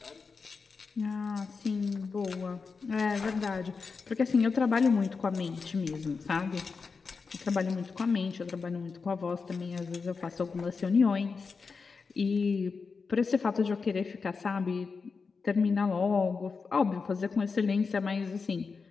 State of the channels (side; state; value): right; quieter; 4.9 dB